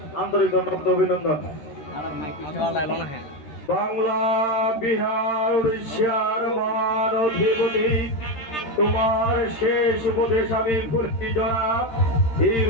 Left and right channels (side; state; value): right; late; 13 ms